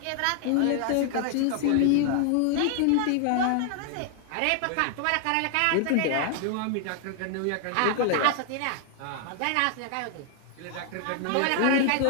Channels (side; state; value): both; different; correlation 0.00